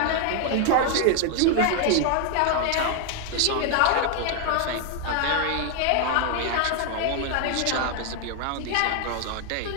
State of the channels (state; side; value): different; both; correlation 0.00